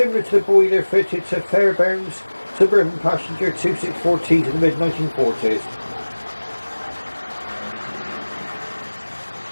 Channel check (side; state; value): both; inverted; correlation -1.00